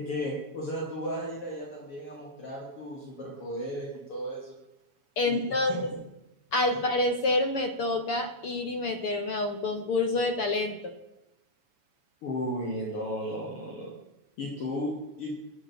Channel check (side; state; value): right; late; 7.1 ms